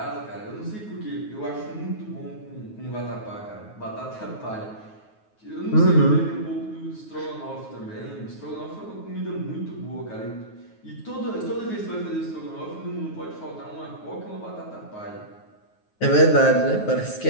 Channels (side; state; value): right; late; 9.4 ms